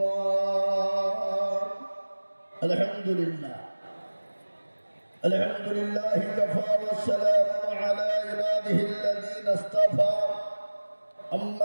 আলহামদুলিল্লাহ আলহামদুলিল্লাহ কাফা ওয়া সালামু আলা ইবাদিহি আল্লাযীনা ইসতাফা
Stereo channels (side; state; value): both; inverted; correlation -1.00